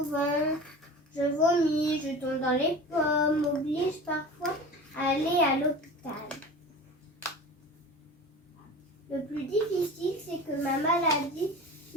ventre. Je vomis, je tombe dans les pommes, m'oblige parfois à aller à l'hôpital. Le plus difficile, c'est que ma maladie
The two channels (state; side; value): normal; both; correlation 0.35